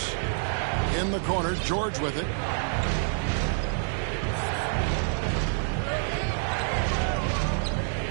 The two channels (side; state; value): left; silent; 60 dB below the other